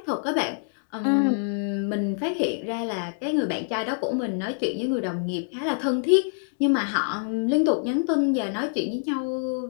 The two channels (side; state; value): right; silent; digital silence